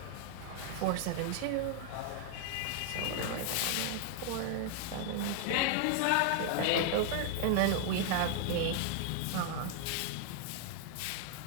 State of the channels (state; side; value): different; both; correlation 0.00